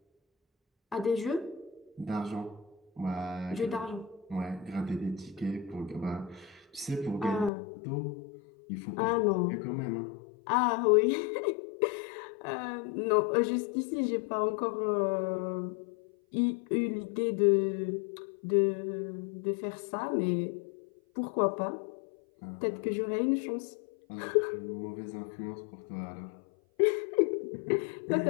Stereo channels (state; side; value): drops out; right; at 7.5 s